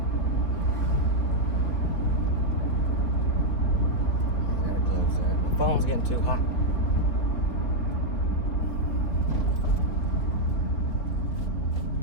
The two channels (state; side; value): late; right; 3.8 ms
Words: I gotta close that. My phone's getting too hot.